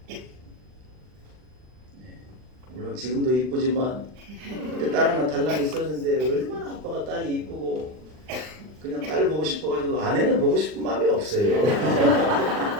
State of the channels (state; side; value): late; left; 39 ms